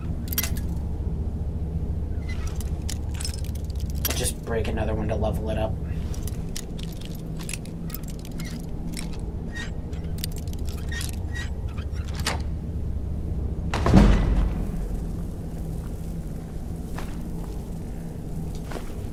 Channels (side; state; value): both; identical; correlation 1.00